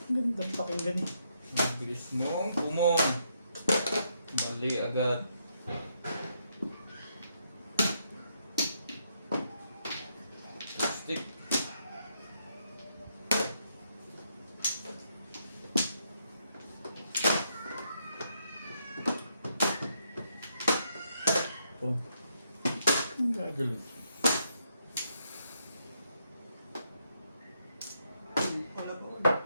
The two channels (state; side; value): inverted; both; correlation -0.77